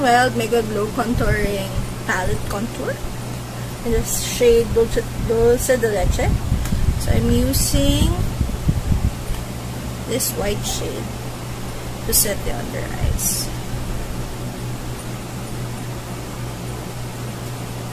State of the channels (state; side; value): identical; both; correlation 1.00